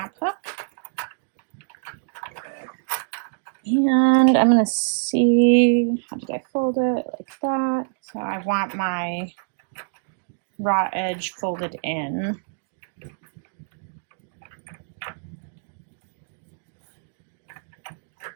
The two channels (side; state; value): left; silent; digital silence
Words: hook. And I'm going to see, how did I fold it? Like that. So I want my raw edge folded in.